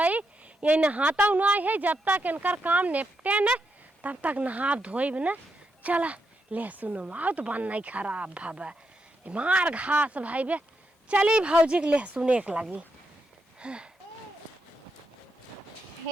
ये नहाता ना है जब तक इनकर काम निपटे न तब तक नहा धोइब ना। चला लहसुन माओ तो बन नहीं खराब भाबा मार घास भाई बे। चली भौजी के लहसुन एक लगी।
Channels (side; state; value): both; normal; correlation 0.83